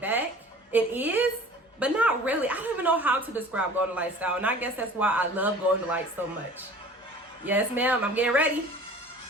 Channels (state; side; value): normal; both; correlation 0.45